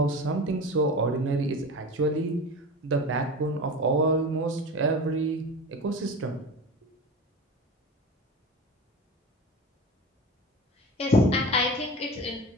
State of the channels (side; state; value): both; normal; correlation 0.31